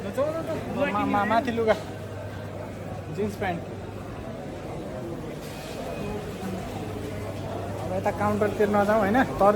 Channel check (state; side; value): identical; both; correlation 1.00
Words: माथि लुगा जिन्स प्यान्ट। अब यता काउन्टरतिर नजाउँ होइन।